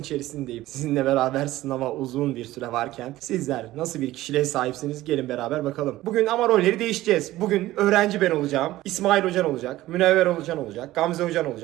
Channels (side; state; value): left; quieter; 16.2 dB